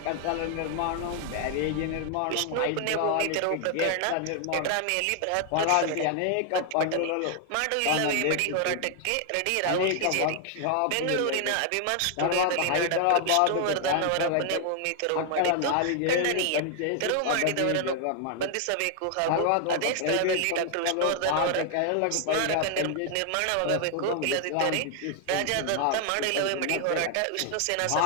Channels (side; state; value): both; different; correlation 0.00